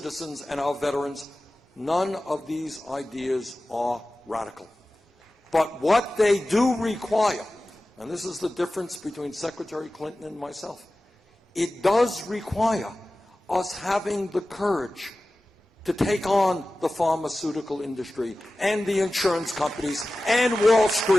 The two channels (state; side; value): normal; both; correlation 0.96